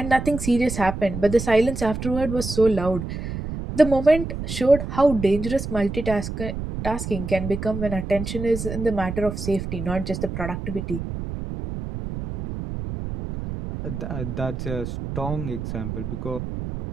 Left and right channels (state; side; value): noise; right; rumble, 6 dB below the sound